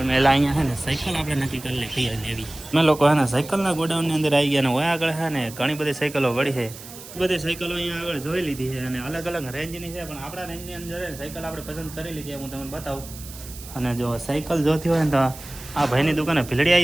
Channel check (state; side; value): noise; right; hiss, 15 dB below the sound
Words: પહેલાં અહીંયા છે ને સાયકલ આપણે નક્કી કરી લે કઈ લેવી. અમે લોકો હે ને સાયકલના ગોડાઉનની અંદર આવી ગયા, ને હોય આગળ છે ને ઘણી બધી સાયકલો વળી છે. બધી સાયકલો અહીંયા આગળ જોઈ લીધી છે, અને અલગ અલગ રેન્જની છે, પણ આપણા રેન્જની અંદર સાયકલ આપણે પસંદ કરી લીધી, હું તમને બતાવું. અને જો સાયકલ જોતી હોય ને તો આ ભાઈની દુકાને ભીલડી